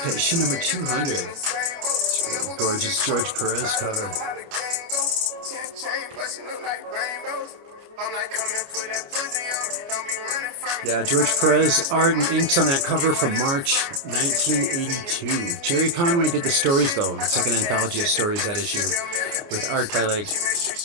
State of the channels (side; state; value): left; late; 29 ms